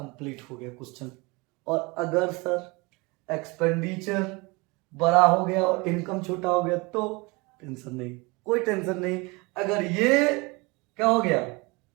हो गया क्वेश्चन। और अगर सर एक्सपेंडिचर बड़ा हो गया और इनकम छोटा हो गया तो टेंशन नहीं, कोई टेंशन नहीं। अगर ये क्या हो गया,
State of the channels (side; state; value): left; quieter; 26.1 dB